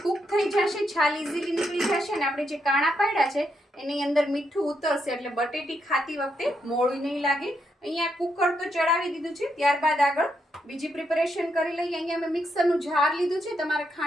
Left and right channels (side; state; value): both; normal; correlation 0.80